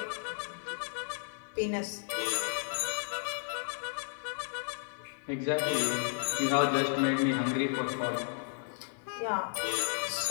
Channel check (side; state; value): right; silent; 55 dB below the other